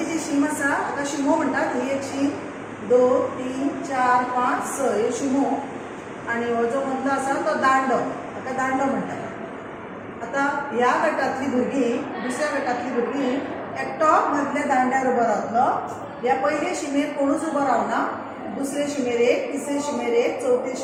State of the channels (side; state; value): both; identical; correlation 1.00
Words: जी शीम आसा हाका शिमो म्हणटात. ही एक शीम 2 3 4 5 6 हे शिमो आणि हो जो मदलो आसा तो दांडो, हाका दांडो म्हणटात. आता ह्या गटातली भुरगीं दुसऱ्या गटातली भुरगीं एकटो मदल्या दांड्यार उबो रावतलो. ह्या पयले शिमेर कोणूच उबो रावना. दुसरे शिमेर 1, तिसरे शिमेर 1, चौथे